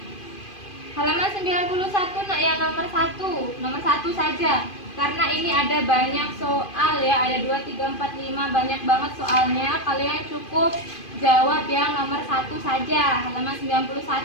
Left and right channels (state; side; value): late; right; 2.5 ms